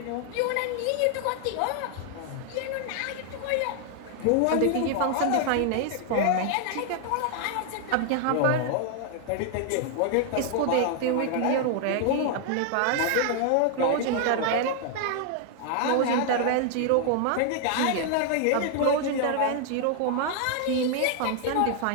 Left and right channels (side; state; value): both; different; correlation 0.00